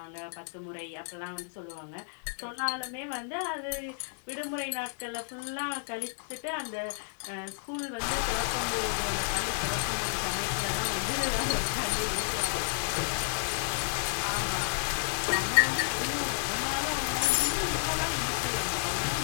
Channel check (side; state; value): right; silent; digital silence